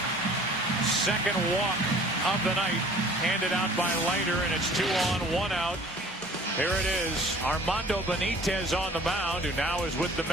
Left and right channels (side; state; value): both; normal; correlation 0.50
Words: Second walk of the night handed out by Leiter, and it's 2 on, 1 out. Here it is, Armando Benitez on the mound, who now is with the